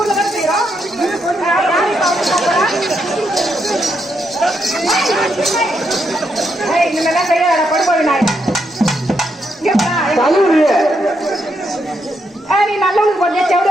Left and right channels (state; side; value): normal; both; correlation 0.80